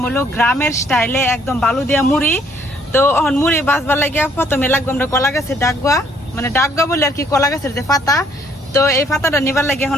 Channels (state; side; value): normal; both; correlation 0.65